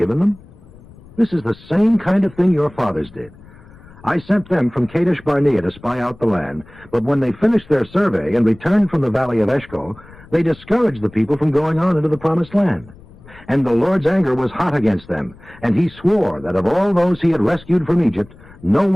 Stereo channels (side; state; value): left; noise; rumble, 23 dB below the sound